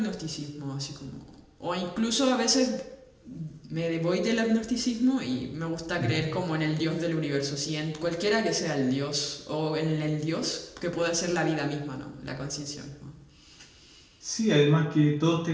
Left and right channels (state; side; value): identical; both; correlation 1.00